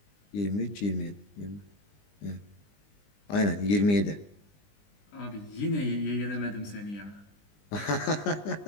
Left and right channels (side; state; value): right; late; 20 ms